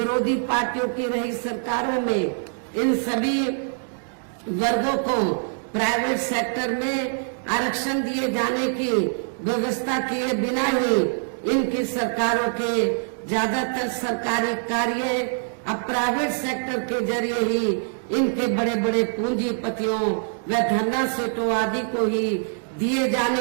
पार्टियों की रही सरकारों में इन सभी वर्गों को प्राइवेट सेक्टर में आरक्षण दिए जाने की व्यवस्था किए बिना ही इनकी सरकारों के ज्यादातर सरकारी कार्य अब प्राइवेट सेक्टर के जरिए ही इनके बड़े बड़े पूंजीपतियों व धन्ना सेठों आदि को ही दिए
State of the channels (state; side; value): silent; left; digital silence